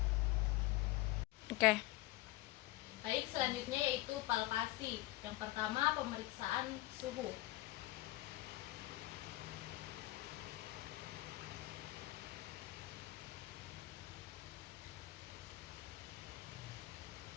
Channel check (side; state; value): right; quieter; 18.3 dB